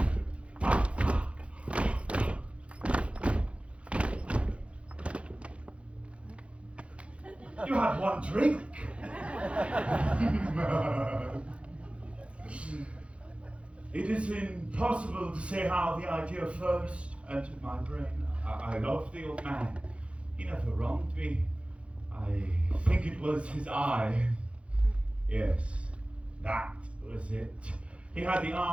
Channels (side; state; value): left; late; 0.061 ms